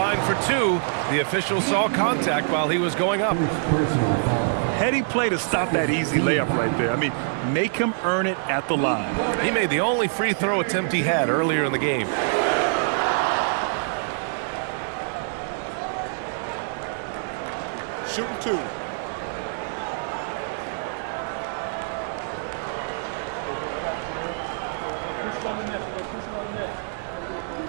for 2. The official saw contact while he was going up. Heady play to stop that easy layup right there. I mean, make him earn it at the line. He made the only free throw attempt he had earlier in the game. Shooting 2.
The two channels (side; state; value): left; silent; digital silence